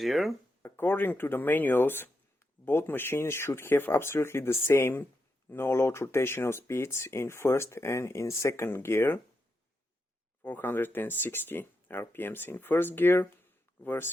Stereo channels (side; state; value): both; normal; correlation 0.85